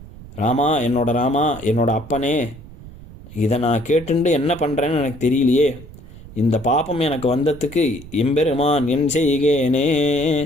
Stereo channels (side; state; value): right; noise; rumble, 17 dB below the sound